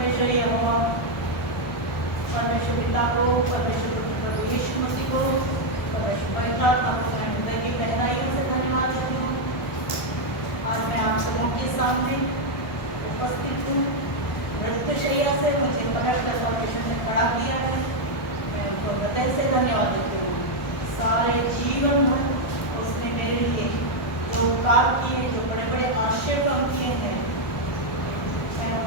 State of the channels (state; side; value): late; right; 1.3 ms